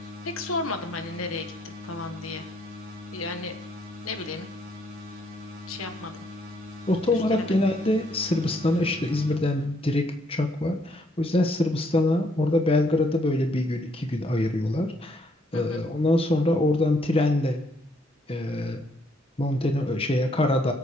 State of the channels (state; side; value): normal; both; correlation 0.69